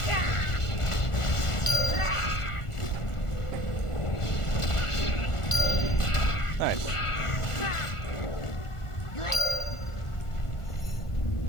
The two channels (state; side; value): late; right; 1.4 ms